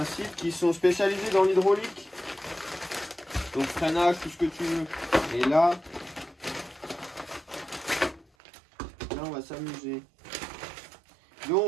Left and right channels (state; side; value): drops out; left; at 8.2 s